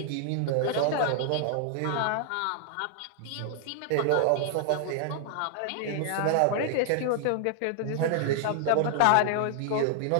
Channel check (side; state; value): both; different; correlation 0.00